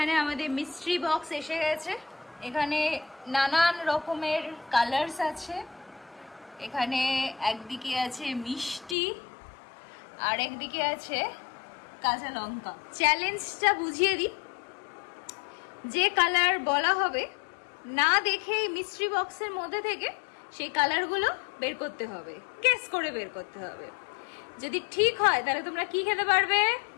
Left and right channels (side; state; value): right; drops out; at 9.0 s